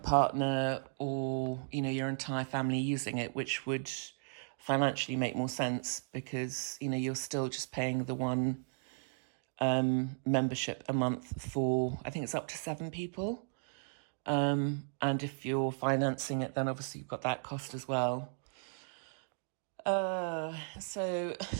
or, your entire family using it, which would financially make more sense because, you're still just paying the one membership a month for, I think it's up to 7 people. And if you're financing it, then obviously you've got that cost as well. So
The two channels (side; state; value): left; silent; digital silence